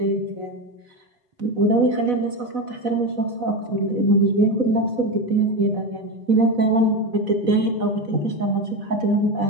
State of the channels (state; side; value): late; left; 4.0 ms